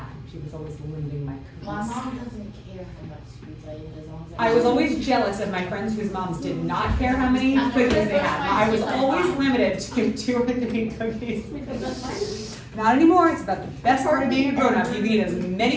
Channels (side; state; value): both; identical; correlation 1.00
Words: She was always limiting my cookies. My mom doesn't care how much sweets I eat as long as I was always jealous of my friends whose moms did not care how many cookies they had. I was always limited to 2 or 3 cookies. Not anymore. It's about the best part of being a grown-up. You can eat as